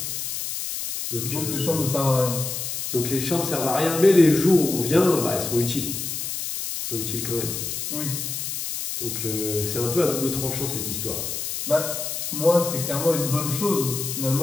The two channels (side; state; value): left; noise; hiss, 4 dB below the sound